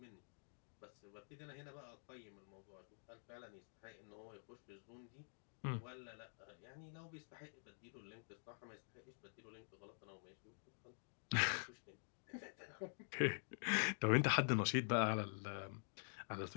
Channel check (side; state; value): right; silent; digital silence